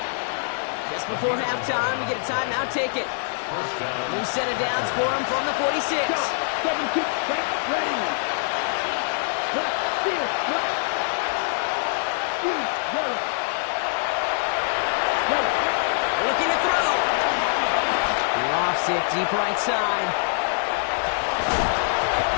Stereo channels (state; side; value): silent; right; digital silence